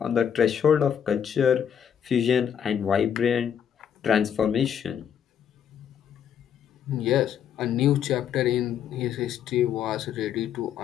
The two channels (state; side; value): quieter; right; 8.6 dB